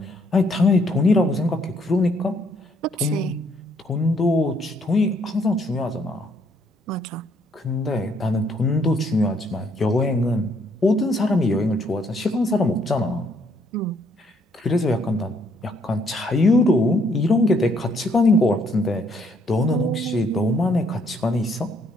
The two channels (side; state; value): both; normal; correlation 0.68